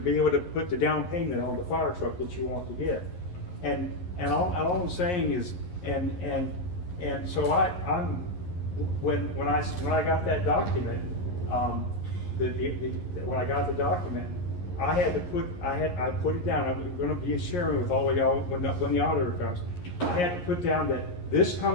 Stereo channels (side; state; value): right; late; 11 ms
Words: able to put the down payment on the fire truck that you want to get. And all I'm saying is, and so when I got that document, when I got the document, I put it down. I'm going to be sharing with all of y'all when the auditor comes. I had to put down that this